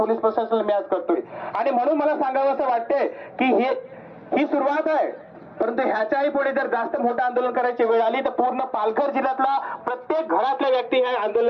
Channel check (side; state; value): both; identical; correlation 1.00